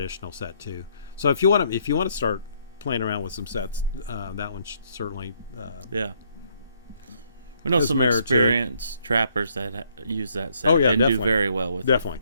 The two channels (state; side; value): inverted; both; correlation -0.70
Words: set too. So if you want to start playing around with some sets, that one should certainly we know some experienced trappers that use that set and definitely. do very well with definitely,